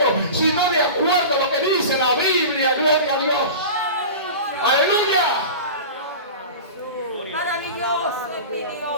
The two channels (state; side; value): inverted; both; correlation -0.32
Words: sino de acuerdo a lo que dice la Biblia. Gloria a Dios. Aleluya. Maravilloso.